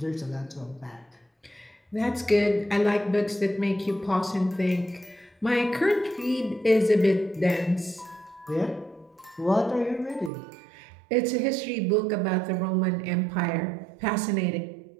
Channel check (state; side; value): drops out; left; at 10.3 s